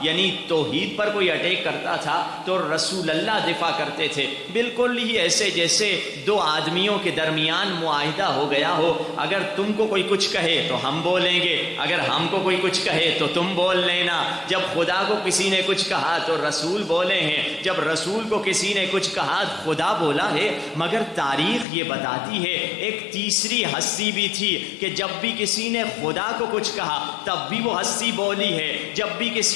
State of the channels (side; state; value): right; drops out; at 21.7 s